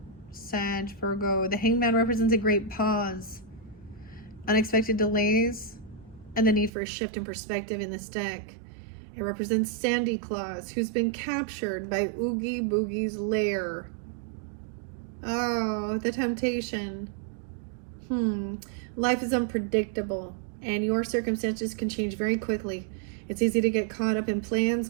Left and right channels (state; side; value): drops out; left; at 6.7 s